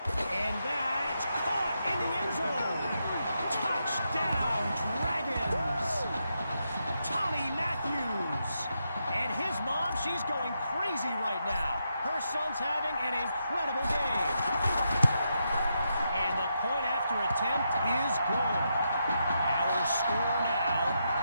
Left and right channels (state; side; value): inverted; both; correlation -0.83